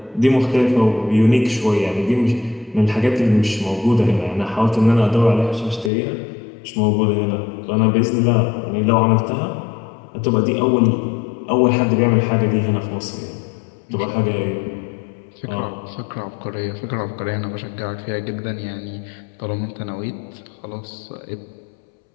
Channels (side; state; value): right; drops out; at 5.9 s